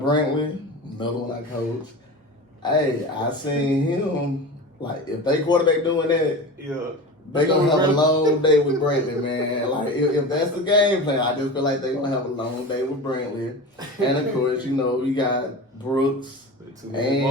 another one I coach, hey, I seen him, like, if they quarterback doing that, Yeah. they gonna have a long day with Brantley, man. Like, if that's the game plan, I just feel like they gonna have a long day with Brantley. And of course, you got Brooks.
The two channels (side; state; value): both; normal; correlation 0.30